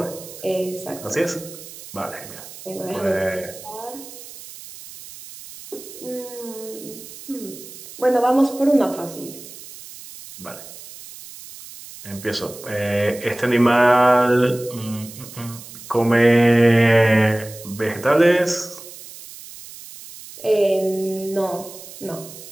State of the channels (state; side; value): noise; right; hiss, 16 dB below the sound